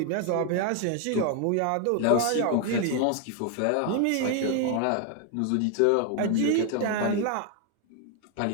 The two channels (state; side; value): different; both; correlation 0.01